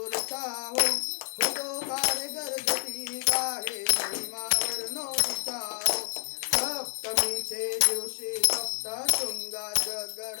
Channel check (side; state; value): right; silent; digital silence